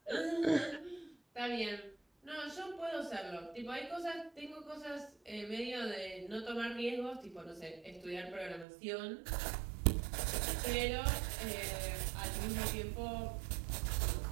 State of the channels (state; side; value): drops out; left; at 8.7 s